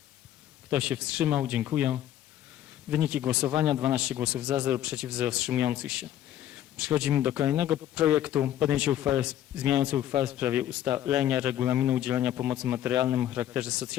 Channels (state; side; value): quieter; right; 11.9 dB